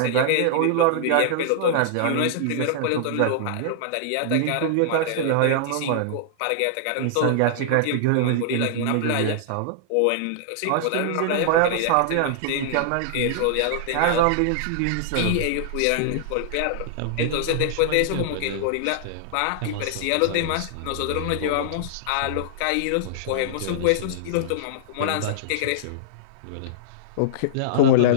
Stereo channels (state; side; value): different; both; correlation -0.01